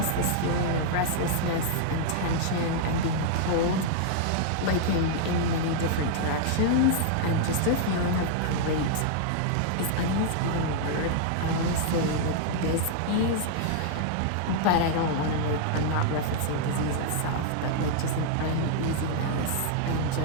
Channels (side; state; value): both; different; correlation -0.01